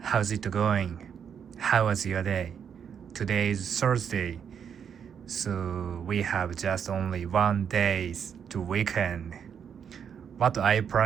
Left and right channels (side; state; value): left; quieter; 7.7 dB